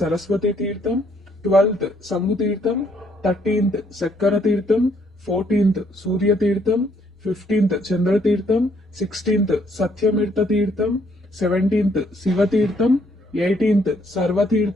తీర్థం, 12th సంగు తీర్థం, 13th చక్కర తీర్థం, 14th సూర్య తీర్థం, 15th చంద్ర తీర్థం, 16th సత్యమీర్థ తీర్థం, 17th శివ తీర్థం, 18th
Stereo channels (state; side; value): normal; both; correlation 0.68